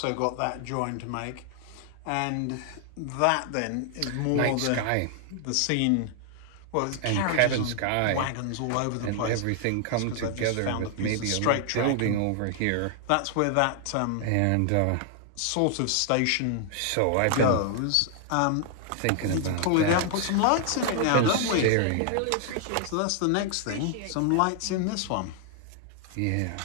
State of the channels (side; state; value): both; different; correlation 0.00